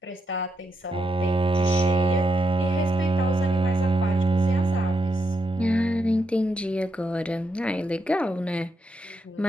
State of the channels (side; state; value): both; normal; correlation 0.82